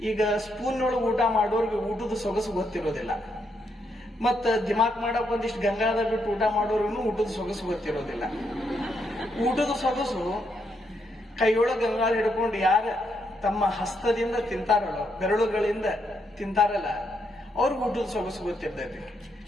ಈಗ ಸ್ಪೂನ್ ಒಳಗೆ ಊಟ ಮಾಡೋರ್ಗೆ ಊಟದ ಸೊಗಸು ಗೊತ್ತಿರೋದಿಲ್ಲ, ಮತ್ತ ದಿಮಾಕ್ ಮಾಡಕ್ ಒಂದಿಷ್ಟು ಗಂಗಾದ ಬಿಟ್ಟು ಊಟ ಮಾಡೋರ್ಗು ಊಟದ ಸೊಗಸು ಗೊತ್ತಿರೋದಿಲ್ಲ. ಊಟದ ಸೊಗಸು ಕೈಯೊಳಗೆ ಗಂಗಾಳ ಹಿಡ್ಕೊಂಡು ಯಾರ ತಮ್ಮ ಹಸ್ತದಿಂದ ತಿಂತಾರಲ್ಲ, ಬೆರಳುಗಳಿಂದ ತಿಂತಾರಲ್ಲ, ಅವ್ರಿಗೆ ಊಟದ ಸೊಗಸು ಗೊತ್ತಿರ್ತೈತಿ.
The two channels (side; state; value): both; normal; correlation 0.78